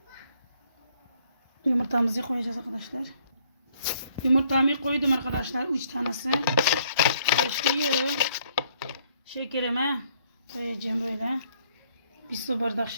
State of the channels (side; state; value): both; inverted; correlation -0.66